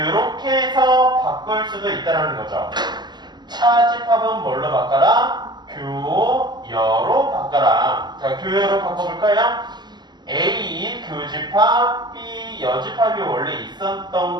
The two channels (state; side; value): late; left; 0.21 ms